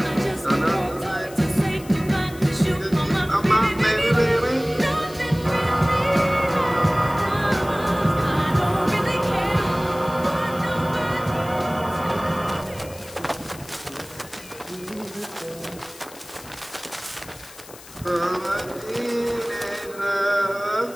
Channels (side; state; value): left; noise; hiss, 19 dB below the sound